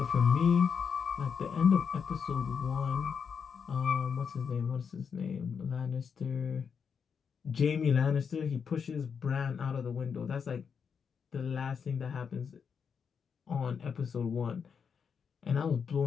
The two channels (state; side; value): quieter; right; 6.5 dB